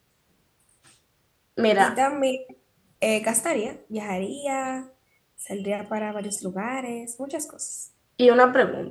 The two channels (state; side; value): identical; both; correlation 1.00